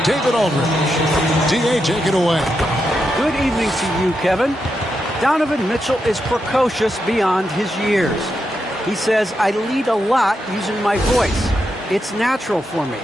David Aldridge. D.A., take it away. Good evening to you, Kevin. Donovan Mitchell is precocious beyond his years. He says, I lead a lot using my voice. It's natural for me.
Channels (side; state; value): both; normal; correlation 0.85